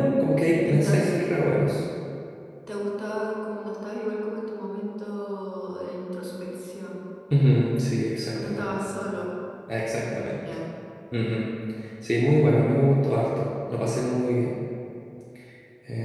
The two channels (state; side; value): identical; both; correlation 1.00